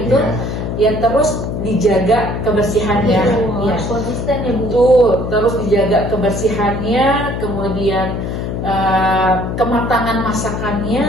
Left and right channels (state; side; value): noise; left; hum, 4 dB below the sound